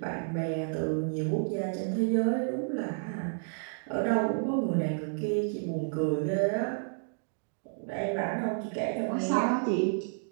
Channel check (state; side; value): silent; left; digital silence